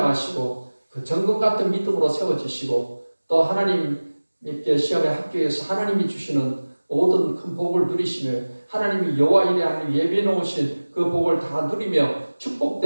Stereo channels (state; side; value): inverted; both; correlation -1.00